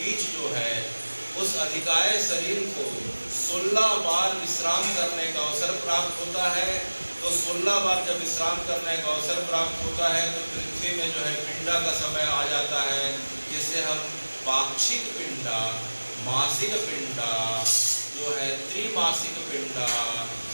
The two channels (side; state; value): both; inverted; correlation -1.00